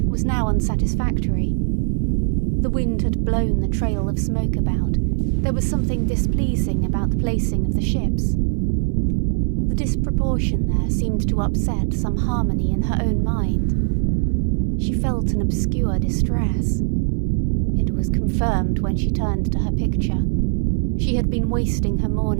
now unsatisfactory. The wind had blown the trail of smoke about. There was something displeasing about the placing of the ships. The disproportion there seemed to upset some harmony in her own mind. She felt an obscure distress. It was confirmed when she turned to her picture. She had been wasting her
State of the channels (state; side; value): silent; left; 61 dB below the other